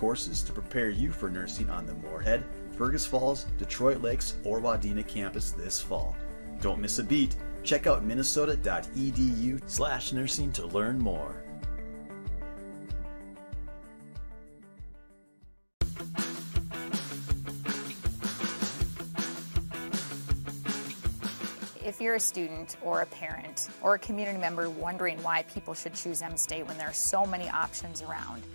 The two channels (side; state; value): both; inverted; correlation -1.00